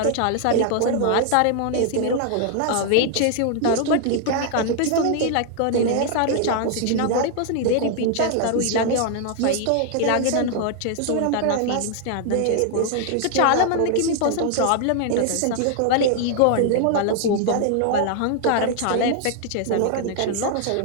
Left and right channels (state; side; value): different; both; correlation 0.00